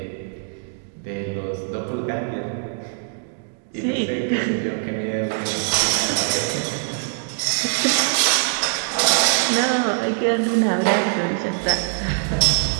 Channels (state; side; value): silent; left; 64 dB below the other